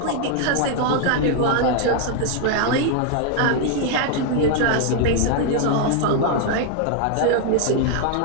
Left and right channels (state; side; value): different; both; correlation 0.00